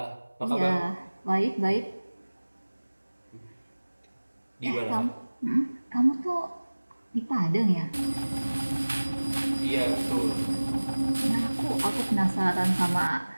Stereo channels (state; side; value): inverted; both; correlation -1.00